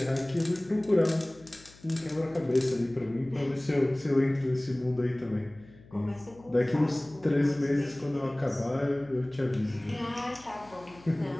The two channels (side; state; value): left; noise; hum, 24 dB below the sound